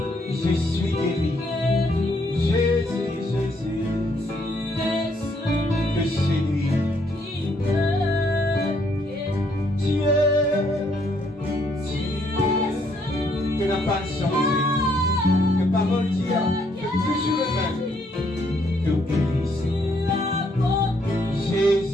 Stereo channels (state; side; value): normal; both; correlation 0.70